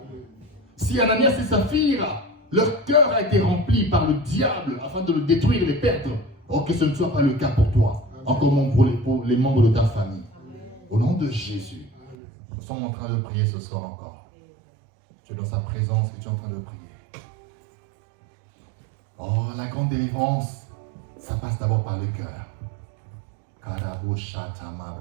Si Ananias et Saphira, leur cœur a été rempli par le diable afin de le détruire et le perdre, oh, que ce ne soit pas le cas pour toi, encore moins pour les membres de ta famille. Au nom de Jésus, nous sommes en train de prier ce soir encore. Tu es dans sa présence et tu es en train de prier. Oh, la grande délivrance, ça passe d'abord par le cœur. Karabo shata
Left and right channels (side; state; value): left; drops out; at 12.2 s